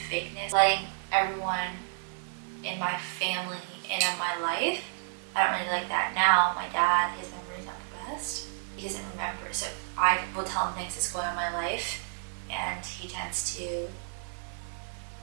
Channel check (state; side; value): silent; left; digital silence